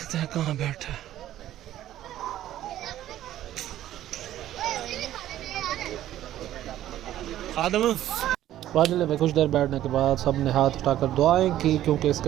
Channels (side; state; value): left; quieter; 12.9 dB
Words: हैं कहाँ बैठा है। खादिम फाजिले में कुछ देर बैठने के बाद सब ने हाथ उठाकर दुआएं की, क्योंकि इसके